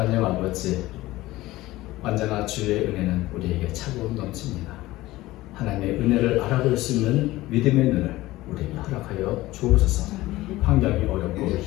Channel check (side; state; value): right; quieter; 17.8 dB